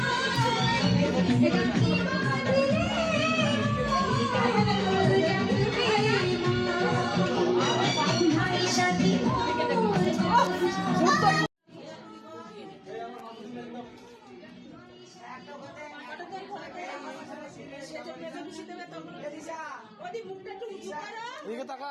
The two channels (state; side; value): identical; both; correlation 1.00